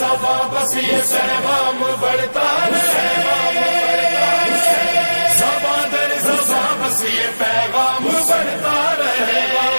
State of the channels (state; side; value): inverted; both; correlation -1.00